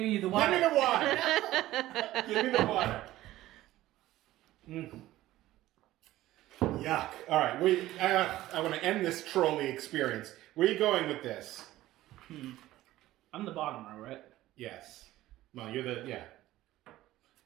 you the Give water. me the water. Give me the water. Yuck. All right, I want to end this trolley experience. Where are you going with this? I'm the bottom row, right? Yes. Well, you're the, yeah.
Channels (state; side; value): quieter; left; 15.6 dB